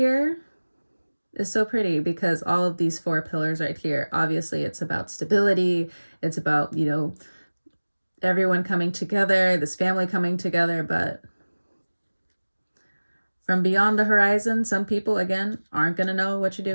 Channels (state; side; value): inverted; both; correlation -1.00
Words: is so pretty because all of these four pillars right here, obviously it's about stability. It's about, you know, everyone coming together, this family coming together, but from beyond the horizon, some people, again, aren't going to know what you're